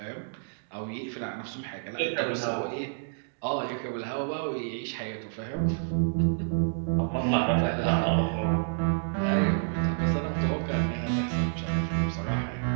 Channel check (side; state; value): left; silent; digital silence